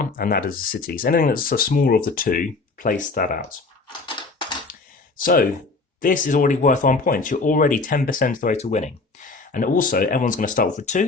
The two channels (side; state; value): right; quieter; 3.9 dB